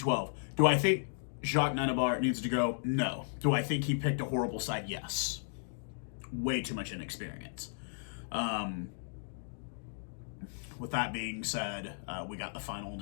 Do I think Jacques Nienaber needs to go? No. Do I think he picked a horrible side? Yes. Way too much inexperience. With that being said, we got the final and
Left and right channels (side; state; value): right; silent; digital silence